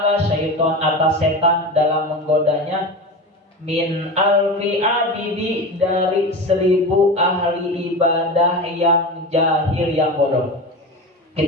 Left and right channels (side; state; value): both; normal; correlation 0.26